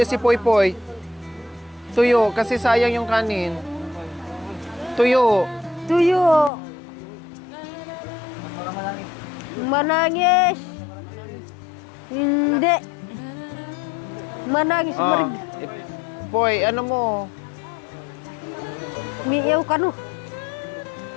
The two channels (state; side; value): drops out; right; at 6.5 s